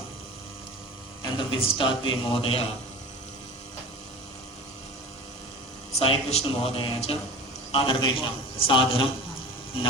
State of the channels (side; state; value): both; normal; correlation 0.35